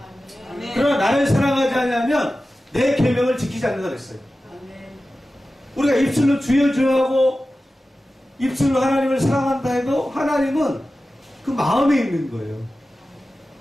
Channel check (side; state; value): both; normal; correlation 0.94